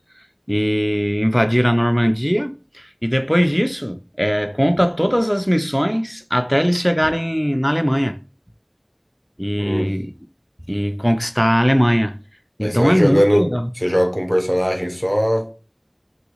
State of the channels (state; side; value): identical; both; correlation 1.00